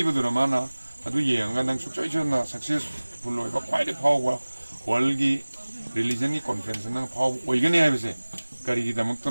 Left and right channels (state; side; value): inverted; both; correlation -1.00